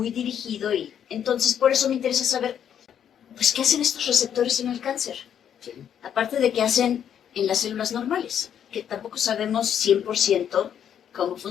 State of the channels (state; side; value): quieter; right; 9.1 dB